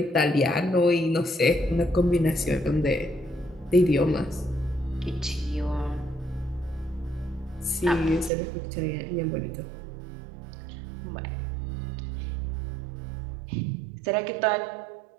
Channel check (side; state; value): left; drops out; at 8.3 s